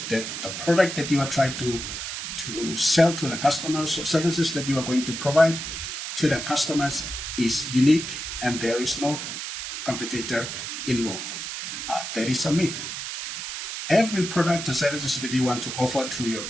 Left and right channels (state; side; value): noise; right; hiss, 6 dB below the sound